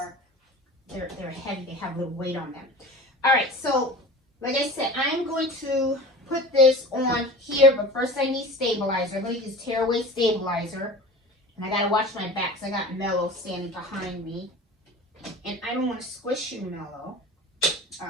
they're heavy, they have a little weight on them. All right, so, like I said, I'm going to put this on here, but first I need stabilizer. I'm going to use tearaway stabilizer. And I got to watch my back because I got Mellow standing behind me. And I don't want to squish you, Mellow. All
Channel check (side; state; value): both; normal; correlation 0.37